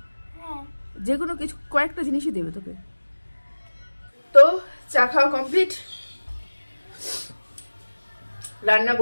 হ্যাঁ, যে কোনো কিছু কয়েকটা জিনিসই দেবে তোকে। তো চা খাওয়া কমপ্লিট, রান্না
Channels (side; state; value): both; inverted; correlation -1.00